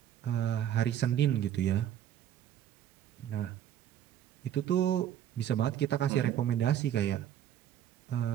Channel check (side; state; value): left; quieter; 10.7 dB